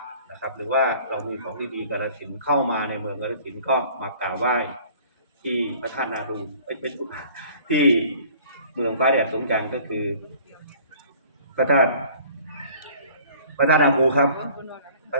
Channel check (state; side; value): inverted; both; correlation -0.51